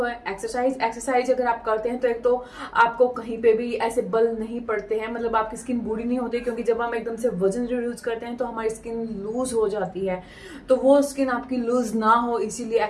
है एक्सरसाइज। एक्सरसाइज अगर आप करते हैं तो एक तो आपको कहीं पे भी ऐसे बल नहीं पड़ते हैं, मतलब आपकी स्किन बूढ़ी नहीं होती, क्योंकि जब हम एकदम से वजन रिड्यूस करते हैं तो हमारी स्किन लूज हो जाती है। तो वो स्किन आपकी लूज ना हो, इसीलिए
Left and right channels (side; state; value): both; identical; correlation 1.00